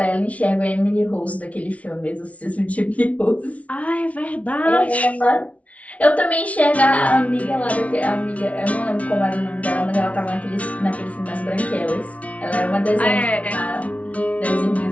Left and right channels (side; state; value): right; late; 0.066 ms